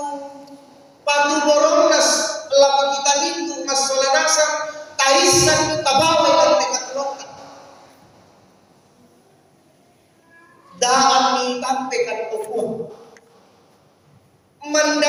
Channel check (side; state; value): both; identical; correlation 1.00